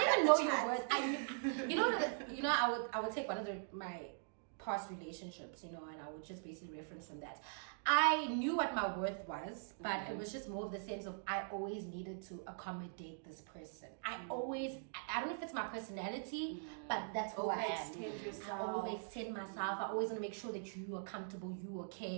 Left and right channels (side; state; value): left; silent; digital silence